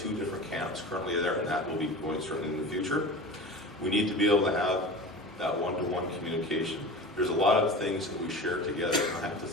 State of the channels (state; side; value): normal; both; correlation 0.33